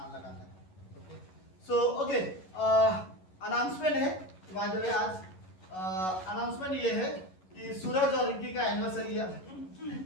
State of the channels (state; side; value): late; right; 11 ms